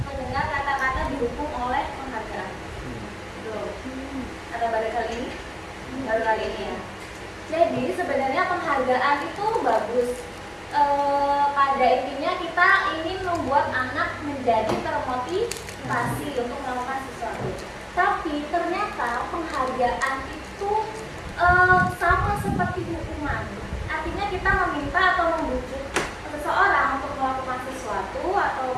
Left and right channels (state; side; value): identical; both; correlation 1.00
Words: mendengar kata-kata dihukum oleh penghargaan? Belum. Ada baru kali ini? Baru kali ini ya. Jadi sebenarnya penghargaan itu bagus. Pada intinya kita ingin membuat anak menjadi termotivasi untuk melakukan sesuatu. Tapi ternyata penghargaan itu sama seperti hukuman. Artinya kita meminta atau membujuk seseorang untuk melakukan sesuatu atau